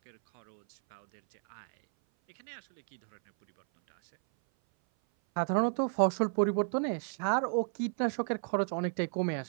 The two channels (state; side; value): silent; left; 56 dB below the other